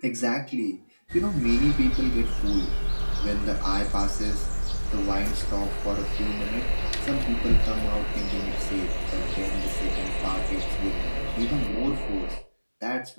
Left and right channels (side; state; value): both; inverted; correlation -1.00